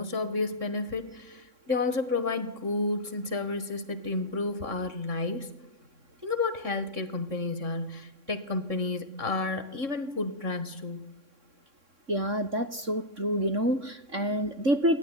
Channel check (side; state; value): left; late; 3.6 ms